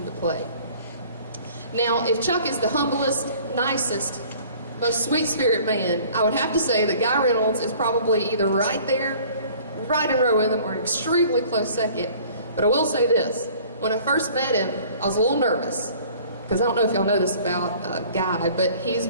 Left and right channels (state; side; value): inverted; both; correlation -0.51